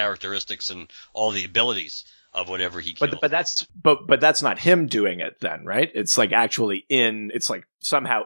and all the abilities of whatever he killed. But that's not him doing it then, right? It's like actually it's like somehow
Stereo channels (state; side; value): inverted; both; correlation -1.00